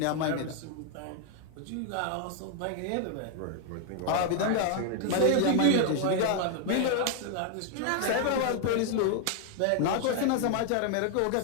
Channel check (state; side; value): different; both; correlation 0.00